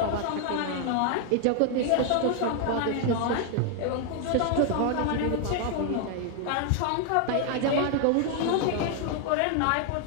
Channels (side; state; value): both; different; correlation 0.00